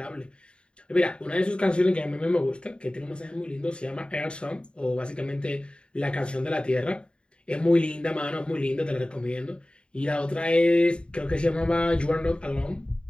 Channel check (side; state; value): right; late; 0.053 ms